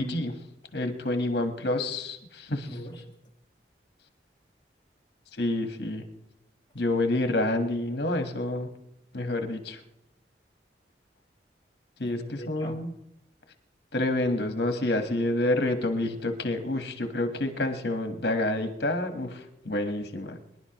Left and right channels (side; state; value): both; normal; correlation 0.50